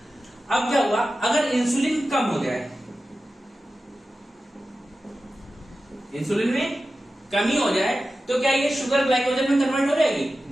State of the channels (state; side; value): normal; both; correlation 0.93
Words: अब क्या हुआ, अगर इंसुलिन कम हो जाए, इंसुलिन में कमी हो जाए, तो क्या ये शुगर ग्लाइकोजन में कन्वर्ट हो जाएगी?